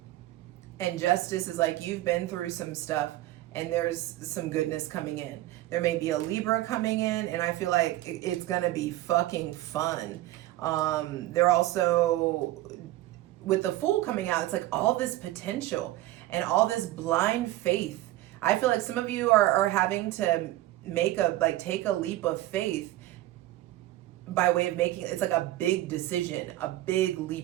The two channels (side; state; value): left; quieter; 15.9 dB